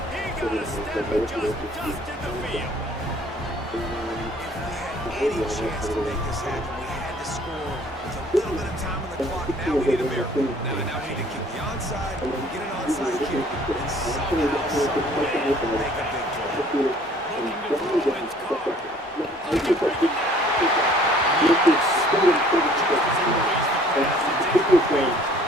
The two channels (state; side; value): normal; both; correlation 0.55